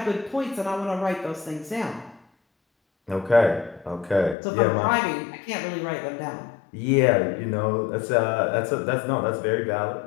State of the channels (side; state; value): right; drops out; at 4.4 s